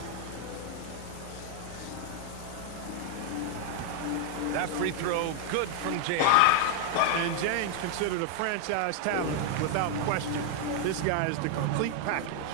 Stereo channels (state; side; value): different; both; correlation 0.00